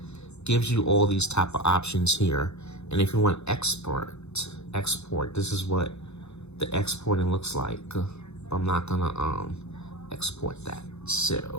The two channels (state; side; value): late; right; 0.81 ms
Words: gives you all these type of options here. And if you want export, this is what the exporting looks like. I'm not gonna export that.